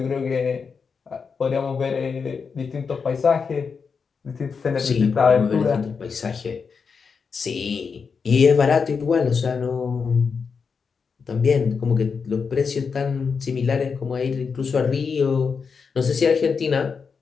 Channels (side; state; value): right; quieter; 5.6 dB